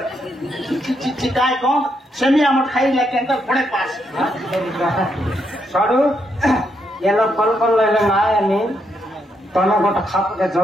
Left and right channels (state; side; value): normal; both; correlation 0.78